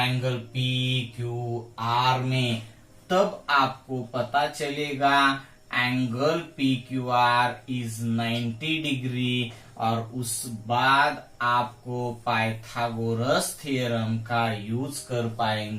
PQR में, तब आपको पता चलेगा एंगल PQR इज 90 डिग्री। और उस बाद आपको पाइथागोरस थ्योरम का यूज कर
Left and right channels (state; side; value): identical; both; correlation 1.00